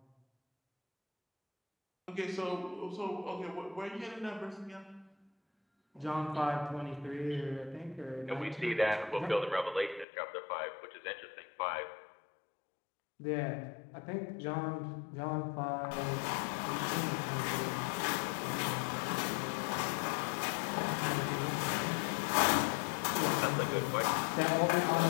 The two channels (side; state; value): right; drops out; at 10.1 s